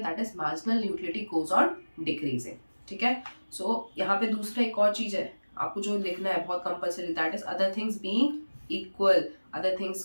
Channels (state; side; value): inverted; both; correlation -1.00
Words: that is marginal utility goes on decreasing. ठीक है, सो यहाँ पे दूसरा एक और चीज है आपको जो लिखना है बहुत compulsory, that is other things being equal, other